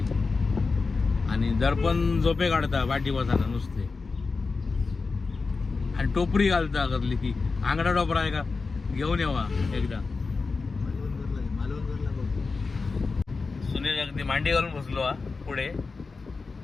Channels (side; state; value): right; quieter; 4.3 dB